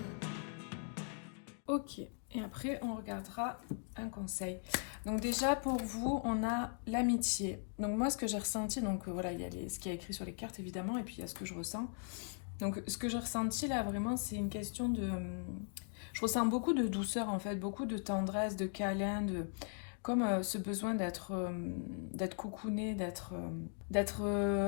Ok, et après on regardera un conseil. Donc déjà pour vous, on a l'amitié. Donc moi ce que j'ai ressenti, donc voilà, il y a ce qui est écrit sur les cartes évidemment, et puis il y a ce que je ressens. Donc ce que j'ai ressenti là vraiment c'est une question de... Je ressens beaucoup de douceur en fait, beaucoup de tendresse, de câlin, comme ce besoin d'être coucouné, d'être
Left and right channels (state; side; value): silent; right; 52 dB below the other